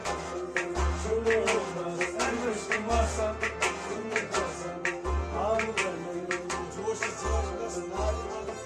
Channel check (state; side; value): identical; both; correlation 1.00